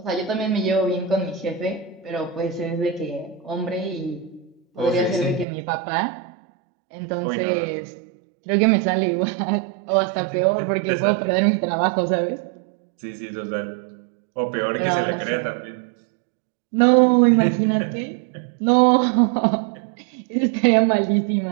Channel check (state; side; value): drops out; left; at 5.5 s